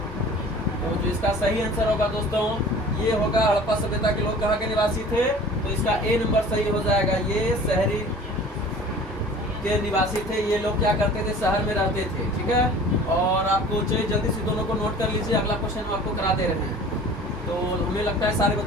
इसका सही आंसर होगा दोस्तों, ये होगा हड़प्पा सभ्यता के लोग कहाँ के निवासी थे, तो इसका ए नंबर सही हो जाएगा। ये शहरी के निवासी थे, ये लोग क्या करते थे, शहर में रहते थे। ठीक है, और आपको चलिए जल्दी से दोनों को नोट कर लीजिए, अगला क्वेश्चन हम आपको करा दे रहे हैं। तो हमें लगता है सारे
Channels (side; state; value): both; normal; correlation 0.44